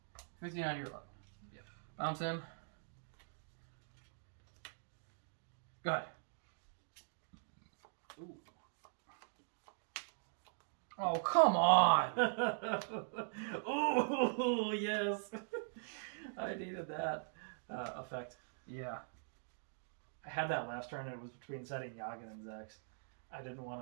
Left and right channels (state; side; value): silent; left; digital silence